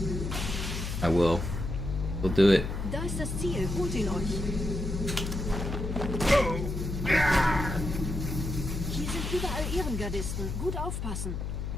I will. We'll do it. Da ist das Ziel. Holt ihn euch. Hier sind überall Ehrengardisten. Gut aufpassen.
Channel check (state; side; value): noise; left; hum, 4 dB below the sound